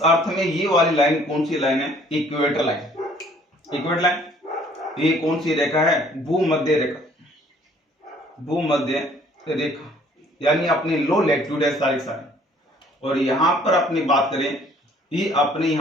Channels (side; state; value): both; normal; correlation 0.58